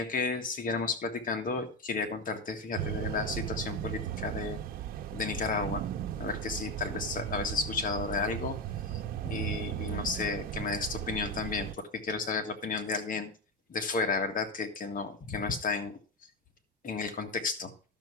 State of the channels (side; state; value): both; normal; correlation 0.13